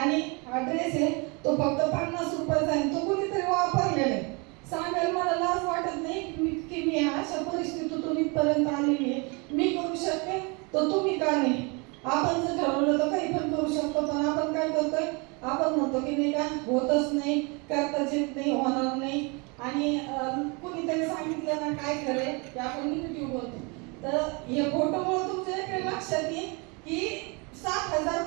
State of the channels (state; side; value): quieter; left; 30.4 dB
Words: हा ड्रेस आहे तो फक्त 50 रुपयाचा आहे. तो कोणीतरी वापरलेला आहे. सांगायला मला लाज वाटत नाही की मी अशा परिस्थितीतून इथपर्यंत आलेली आहे. मी करू शकते तर तुम्ही का नाही? आपण जर ठरवलं तर काही पण करू शकतो, पण आपण काय करतोय, आपण म्हणतो की नाही का होतच नाही, करताच येत नाही, होणार नाही. आणि कुणीतरी सांगितलं ना काय खरंय की आपण निगेटिव्ह बोलतो. तर हे फोटोमुळे तुमच्या इकडे लक्षात येईल की 7,000